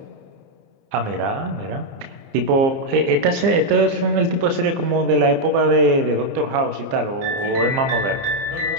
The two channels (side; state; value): left; late; 30 ms